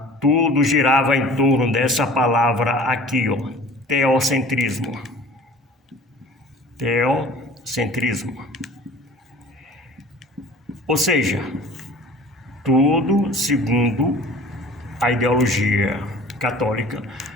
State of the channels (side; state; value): both; normal; correlation 0.45